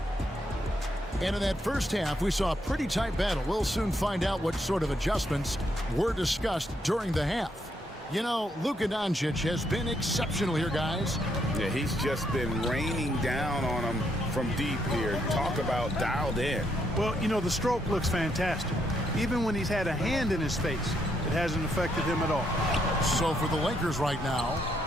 And in that first half, we saw a pretty tight battle. We'll soon find out what sort of adjustments were discussed during the half. You know, Luka Doncic has been exceptional here, guys. Yeah, he's just been raining down on them from deep here. Talk about dialed in. Well, you know, the stroke looks fantastic. Even when he's had a hand in his face, it hasn't affected him at all. So for the Lakers right now,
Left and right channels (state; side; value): normal; both; correlation 0.76